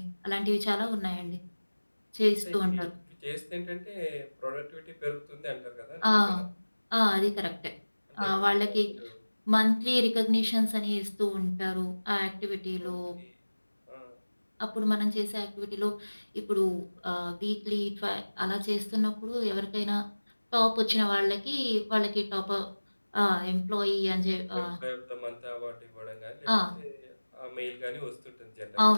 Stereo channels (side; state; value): both; inverted; correlation -1.00